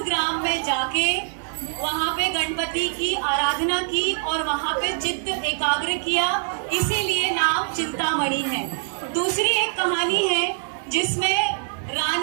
ग्राम में जाके वहाँ पे गणपति की आराधना की और वहाँ पे चित्त एकाग्र किया, इसीलिए नाम चिंतामणि है। दूसरी एक कहानी है जिसमें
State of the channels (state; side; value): silent; left; 63 dB below the other